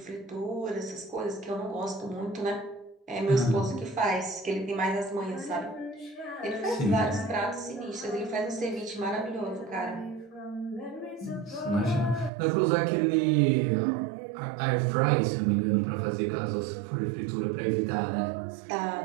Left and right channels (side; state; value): left; drops out; at 12.3 s